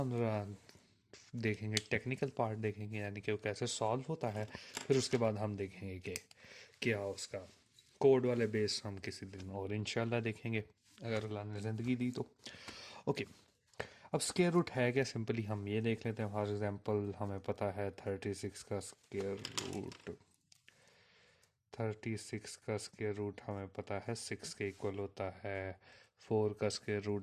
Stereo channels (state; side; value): identical; both; correlation 1.00